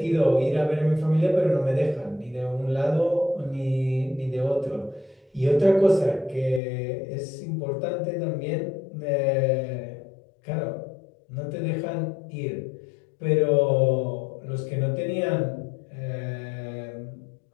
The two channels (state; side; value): drops out; right; at 6.6 s